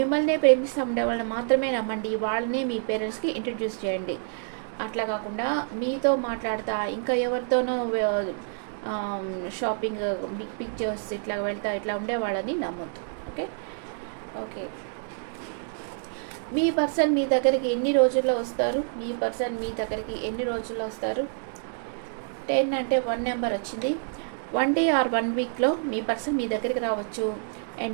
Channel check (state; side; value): silent; left; 60 dB below the other